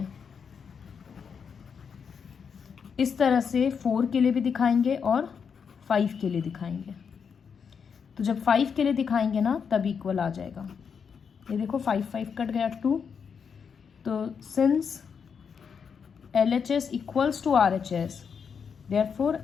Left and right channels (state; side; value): quieter; right; 6.5 dB